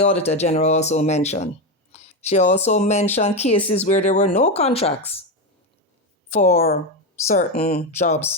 General also mentioned. She also mentioned cases where there were no contracts for certain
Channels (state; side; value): normal; both; correlation 0.12